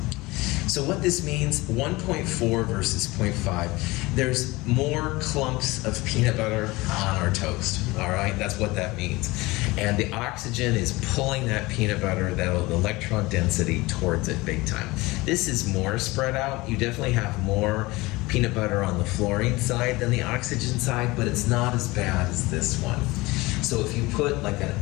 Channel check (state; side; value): quieter; right; 21.7 dB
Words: So what this means, 1.4 versus 0.5, there's more clumps of peanut butter on our toast, all right? That's what that means. And the oxygen is pulling that peanut butter, that electron density, towards it big time. This is more spread out. You definitely have more peanut butter on the fluorine side than the oxygen side, but it's not as bad as this one. So if you put like